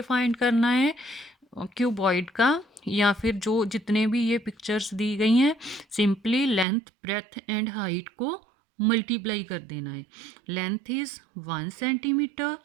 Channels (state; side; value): drops out; left; at 6.7 s